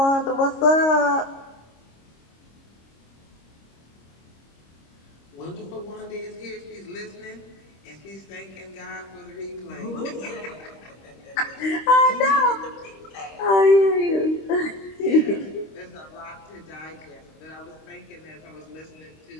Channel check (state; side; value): late; right; 26 ms